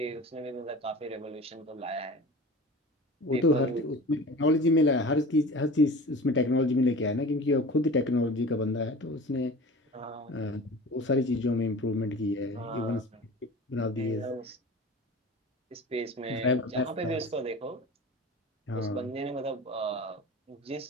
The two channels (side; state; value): both; normal; correlation 0.37